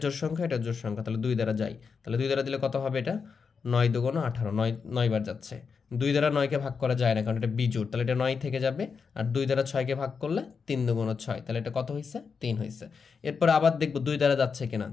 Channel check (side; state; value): right; quieter; 5.6 dB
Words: জোড় সংখ্যা, এটা জোড় সংখ্যা, তাহলে 2 দ্বারা যাই। তাহলে 2 দ্বারা দিলে কত হবে? এটা 9 দুগুণ 18, 9 বার যাচ্ছে। 2 দ্বারা 9কে ভাগ করা যায় না, কারণ এটা বিজোড়, তাহলে এটা 9 থেকে যাবে। আর 2 দ্বারা 6কে ভাগ করলে 3 দুগুণ 6, তাহলে এটা কত হয়েছে? 3 হয়েছে। এরপর আবার দেখবো 2 দ্বারা যাচ্ছে কিনা।